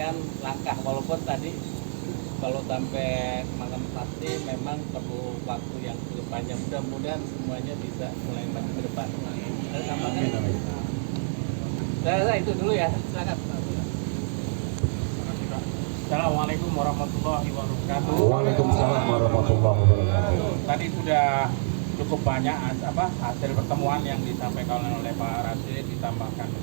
langkah, walaupun tadi kalau sampai malam pasti memang perlu waktu yang cukup panjang. Mudah-mudahan semuanya bisa mulai maju ke depan. Saya rasa itu dulu ya. Silakan. Assalamualaikum warahmatullahi wabarakatuh. Waalaikumsalam warahmatullahi wabarakatuh. Tadi sudah cukup banyak hasil pertemuan yang disampaikan oleh Pak Rasid ditambahkan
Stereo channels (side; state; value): left; silent; digital silence